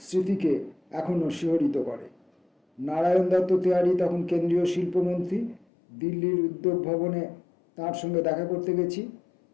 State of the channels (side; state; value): right; drops out; at 5.7 s